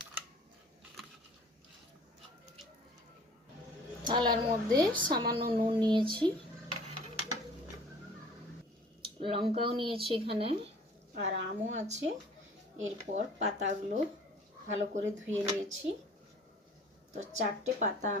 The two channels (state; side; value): normal; both; correlation 0.50